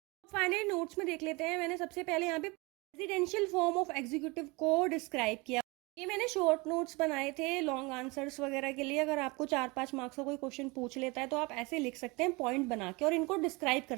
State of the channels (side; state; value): left; quieter; 26.1 dB